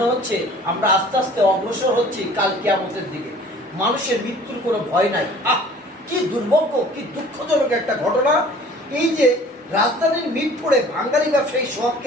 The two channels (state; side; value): normal; both; correlation 0.49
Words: হচ্ছে আমরা আস্তে আস্তে অগ্রসর হচ্ছি কাল কিয়ামতের দিকে। মানুষের মৃত্যুর কোনো ভয় নাই। কি দুর্ভাগ্য, কি দুঃখজনক একটা ঘটনা। এই যে রাজধানীর মিরপুরে বাঙালি ব্যবসায়ী